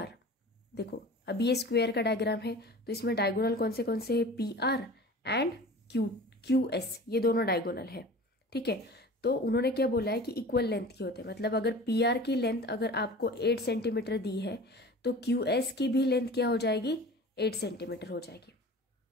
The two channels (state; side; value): normal; both; correlation 0.39